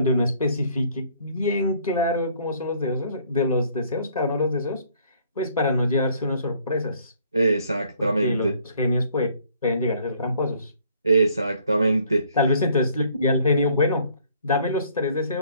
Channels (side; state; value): both; inverted; correlation -0.61